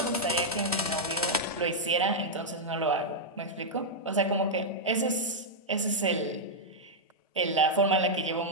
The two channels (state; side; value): normal; both; correlation -0.05